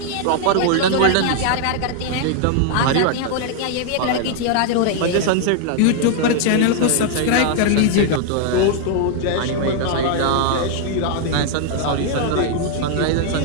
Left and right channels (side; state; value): both; different; correlation 0.00